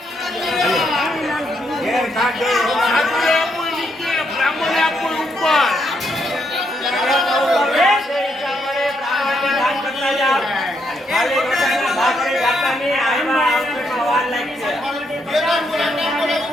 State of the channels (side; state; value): both; normal; correlation 0.77